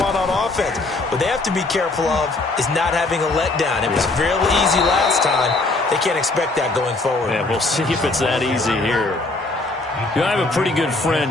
on offense. What they have to be careful of is not having a letdown. It was real easy last time. They can't expect that going forward. Yeah, we'll see if it's that easy here. You know, I have a pretty good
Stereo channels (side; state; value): right; quieter; 3.2 dB